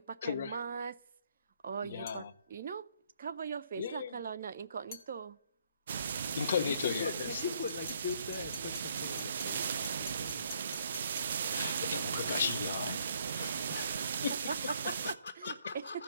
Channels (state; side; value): inverted; both; correlation -0.66